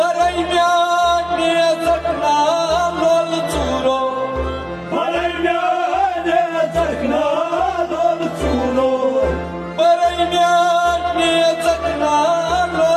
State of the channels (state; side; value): identical; both; correlation 1.00